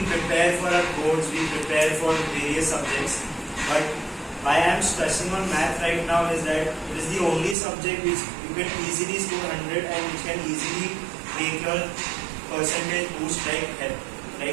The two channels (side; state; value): left; drops out; at 7.6 s